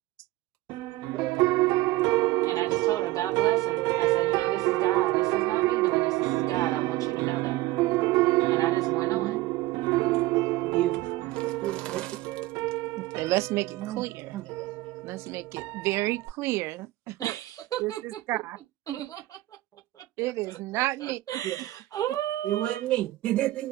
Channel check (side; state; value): left; quieter; 18.1 dB